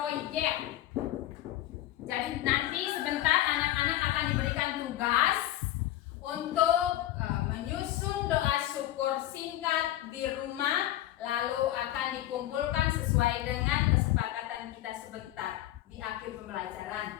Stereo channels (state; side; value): quieter; right; 14.3 dB